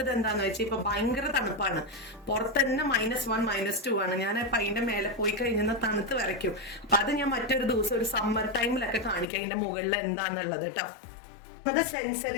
എന്താന്ന് വെച്ചാൽ ഇപ്പൊ ഭയങ്കര തണുപ്പാണ്. പുറത്ത് തന്നെ -1 -2 ആണ്. ഞാൻ അതിന്റെ മേലെ പോയി കഴിഞ്ഞാൽ തണുത്ത് വരയ്ക്കും. അപ്പൊ അത് ഞാൻ മറ്റൊരു ദിവസം ഒരു സമ്മർ ടൈമിലൊക്കെ കാണിക്കാം അതിന്റെ മുകളിൽ എന്താന്നുള്ളത് കേട്ടോ. അത്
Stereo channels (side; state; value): right; drops out; at 9.2 s